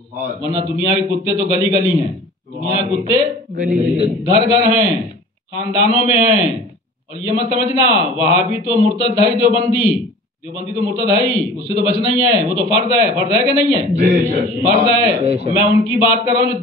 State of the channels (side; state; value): both; normal; correlation 0.43